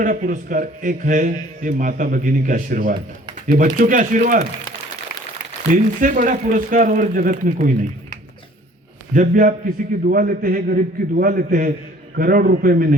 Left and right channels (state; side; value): normal; both; correlation 0.53